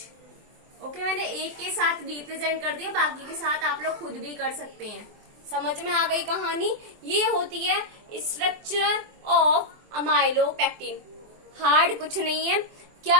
ओके, मैंने एक के साथ रिप्रेजेंट कर दिया, बाकी के साथ आप लोग खुद भी कर सकते हैं। समझ में आ गई कहानी। ये होती है स्ट्रक्चर ऑफ अमाइलोपेक्टिन। हार्ड कुछ नहीं है।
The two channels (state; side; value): late; left; 24 ms